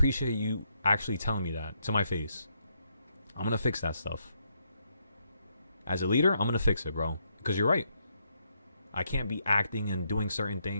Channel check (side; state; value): both; inverted; correlation -0.77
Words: you actually telling me that to my face. I'm going to fix that stuff. As a leader, I'm going to fix it, bro. Because you're right. I can't be acting and doing certain